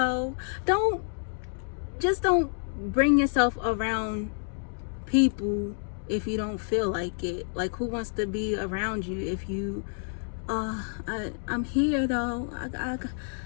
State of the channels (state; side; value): silent; right; digital silence